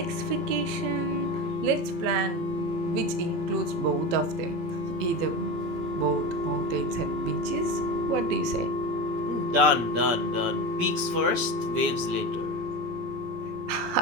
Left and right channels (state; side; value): late; left; 17 ms